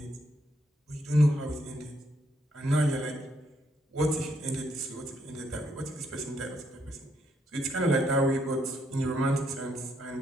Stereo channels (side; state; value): both; normal; correlation 0.74